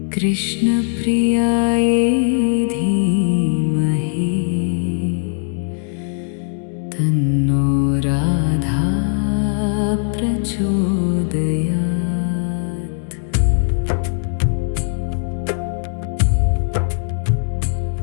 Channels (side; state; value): right; silent; digital silence